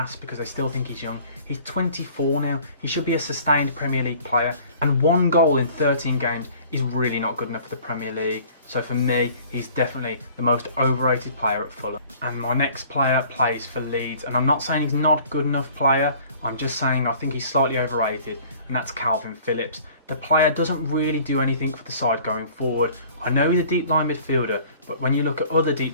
because they still think he's young. He's 24 now. He should be a sustained Premier League player, and 1 goal in 13 games is really not good enough for the Premier League. So for me, he's definitely the most overrated player at Fulham. And my next player plays for Leeds, and I'm not saying he's not a good enough player, I'm just saying I think he's slightly overrated, and that's Calvin Phillips. The player doesn't really do anything for the side going forward. I know he's a deep line midfielder, but when you look at other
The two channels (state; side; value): inverted; both; correlation -0.51